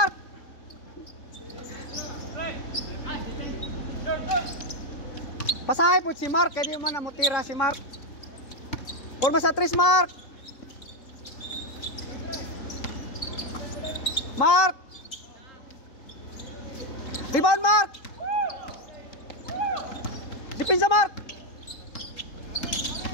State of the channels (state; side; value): late; right; 3.8 ms